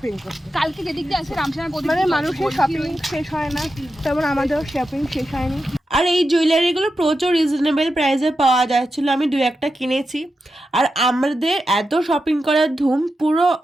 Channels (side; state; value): both; normal; correlation 0.89